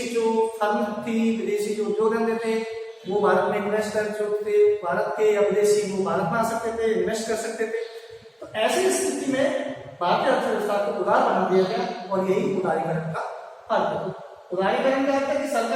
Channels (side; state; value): both; identical; correlation 1.00